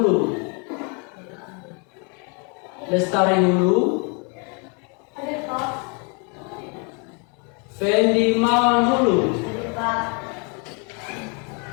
Fendi Mawan Hulu,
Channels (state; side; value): quieter; right; 35.4 dB